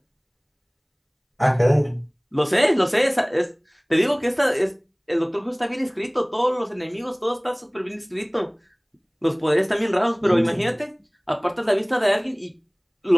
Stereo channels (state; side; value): identical; both; correlation 1.00